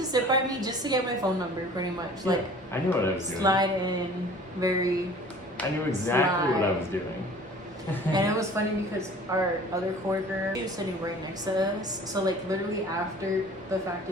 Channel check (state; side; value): normal; both; correlation 0.47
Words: sit by me just to get my phone number, pretty much. Like, I knew what I was doing. Slide in, I knew exactly what I was doing. And it was funny because our other coworker, she was sitting right next to us. So like literally after the fact